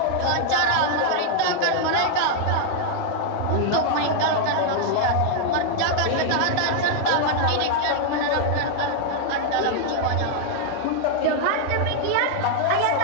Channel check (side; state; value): both; different; correlation 0.00